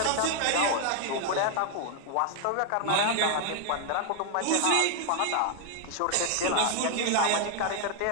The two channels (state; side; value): different; both; correlation 0.00